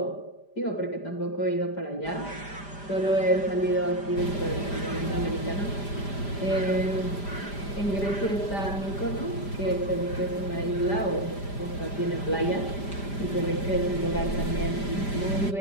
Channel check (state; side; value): late; right; 5.0 ms